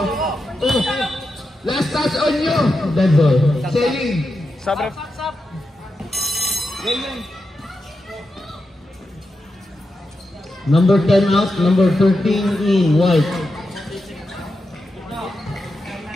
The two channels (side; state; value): both; normal; correlation 0.88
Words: Last touch on you. Dead ball. Selling. Sabre. Number 10 out, number 13 in, white.